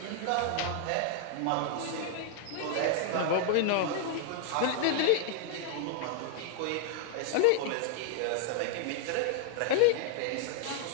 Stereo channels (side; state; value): both; different; correlation 0.00